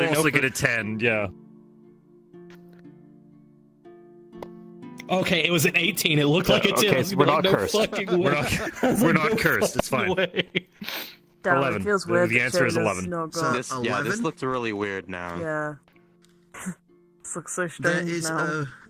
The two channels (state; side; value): identical; both; correlation 1.00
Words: also get a 10, yeah. Okay, it was an 18. It looked like a 10. Okay, so we're not cursed. We're not No cursed. It's fine. way. 11. It feels weird. The answer is 11. This looks really weird now. Yeah. This looks so strange now.